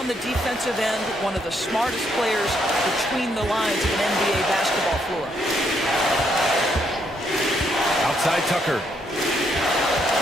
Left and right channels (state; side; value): normal; both; correlation 0.74